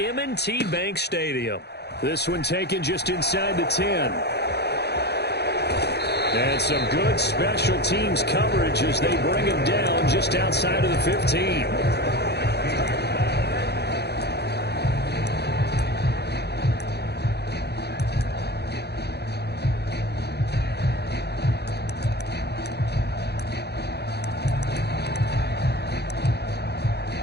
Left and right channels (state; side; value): late; right; 0.48 ms